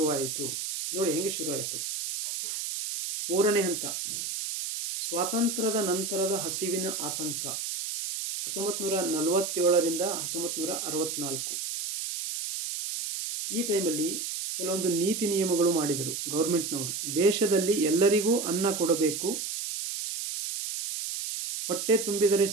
ನೋಡಿ ಹೆಂಗೆ ಶುರುವಾಯಿತು. ಮೂರನೇ ಹಂತ, ಸ್ವಾತಂತ್ರ್ಯದ ನಂತರದ ಹಸಿವಿನ ಆತಂಕ. 1947ರಿಂದ 1964 ಈ ಟೈಮಲ್ಲಿ ಕೆಲವೊಂದು ನೀತಿ ನಿಯಮಗಳು ಮಾಡಿದರು ಗೌರ್ಮೆಂಟ್ನವರು. ದೇಶದಲ್ಲಿ ಎಲ್ಲರಿಗೂ ಅನ್ನ ಕೊಡಬೇಕು, ಹೊಟ್ಟೆ ತುಂಬಿದರೆ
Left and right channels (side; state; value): right; noise; hiss, 4 dB below the sound